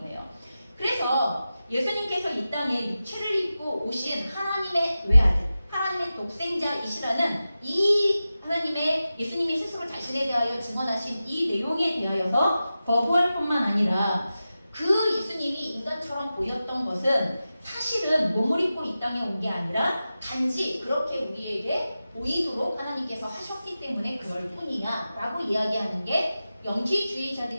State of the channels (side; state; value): both; inverted; correlation -0.94